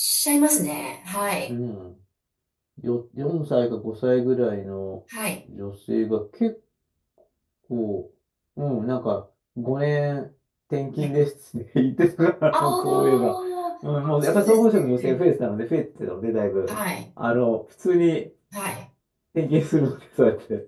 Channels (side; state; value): both; identical; correlation 1.00